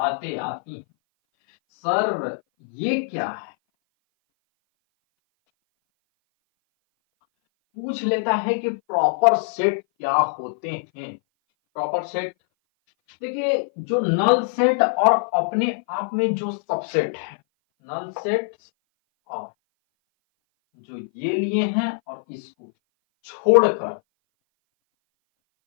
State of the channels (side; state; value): right; silent; 58 dB below the other